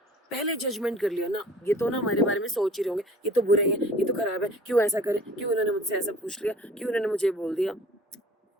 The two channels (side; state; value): both; normal; correlation 0.48